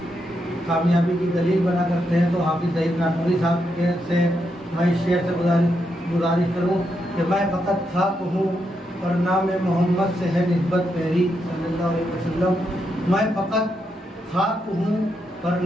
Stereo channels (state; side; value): normal; both; correlation 0.82